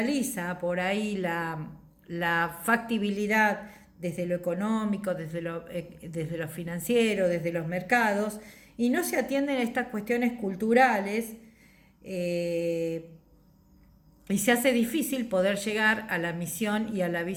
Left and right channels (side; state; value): both; identical; correlation 1.00